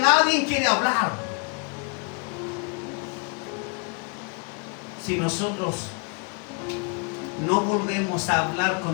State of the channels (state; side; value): quieter; right; 34.1 dB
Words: quiere hablar. Si nosotros no volvemos a hablar